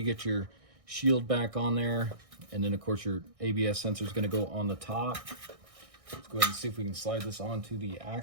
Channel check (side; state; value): left; late; 1.6 ms